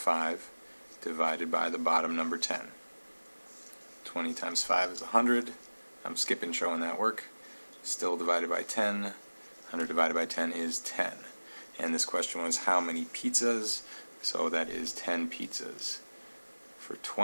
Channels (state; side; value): inverted; both; correlation -1.00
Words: divided by the bottom number 10. 20 times 5 is 100. I'm skipping showing that work. Still divided by 10. 100 divided by 10 is 10. And this question was how many pizzas? So that is 10 pizzas. For